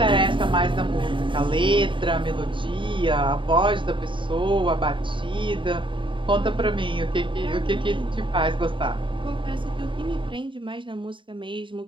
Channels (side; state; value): left; late; 0.24 ms